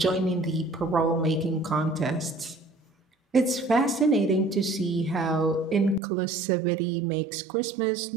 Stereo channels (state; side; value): drops out; left; at 6.0 s